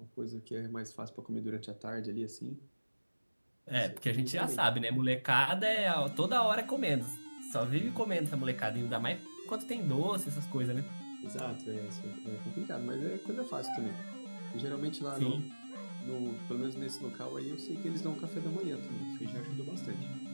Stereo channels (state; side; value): inverted; both; correlation -1.00